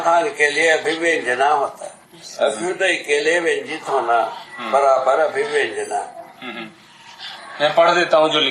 के लिए अभिव्यंजना होता है। अभ्युदय के लिए व्यंजित होना बराबर अभिव्यंजना। मैं पढ़ देता हूँ जो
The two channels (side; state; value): both; identical; correlation 1.00